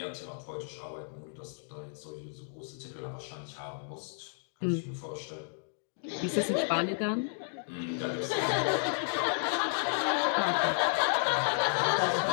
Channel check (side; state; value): right; silent; digital silence